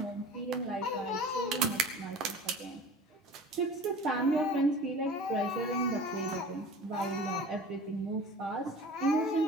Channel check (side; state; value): both; normal; correlation 0.40